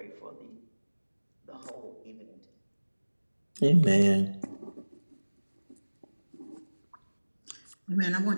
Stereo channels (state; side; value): inverted; both; correlation -1.00